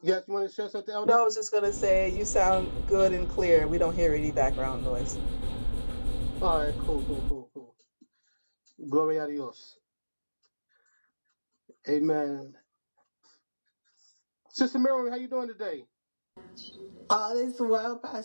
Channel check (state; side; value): inverted; both; correlation -1.00